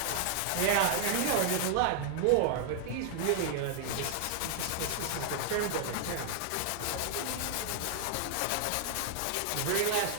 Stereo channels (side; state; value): both; different; correlation 0.00